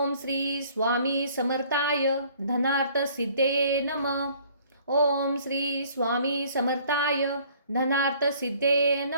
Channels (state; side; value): inverted; both; correlation -0.57